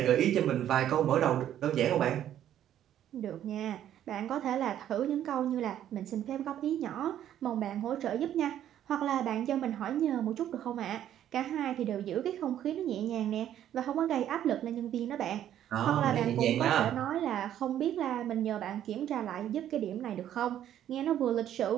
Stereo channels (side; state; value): left; quieter; 11.1 dB